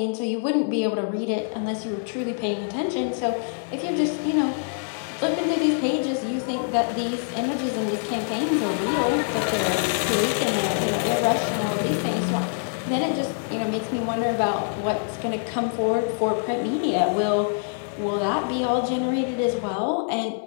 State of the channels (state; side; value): silent; right; digital silence